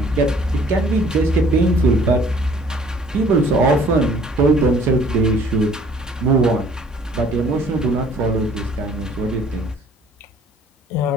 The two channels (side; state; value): both; normal; correlation 0.56